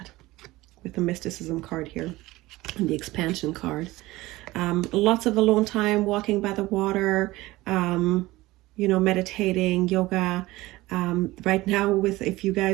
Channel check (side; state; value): left; quieter; 18.9 dB